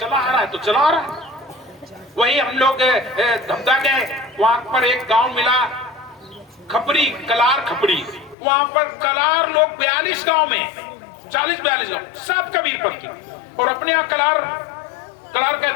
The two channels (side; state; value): right; drops out; at 8.3 s